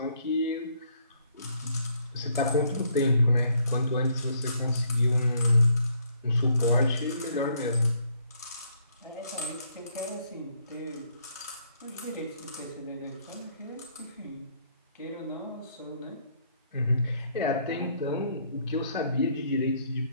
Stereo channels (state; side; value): inverted; both; correlation -0.68